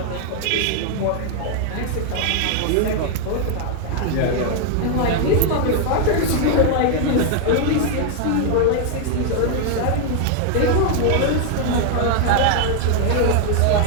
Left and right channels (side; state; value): both; different; correlation 0.00